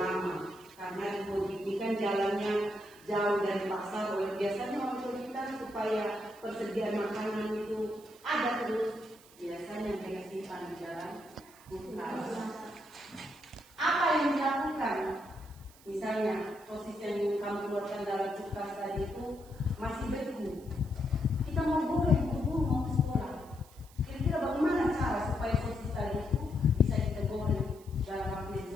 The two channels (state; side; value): noise; right; hiss, 24 dB below the sound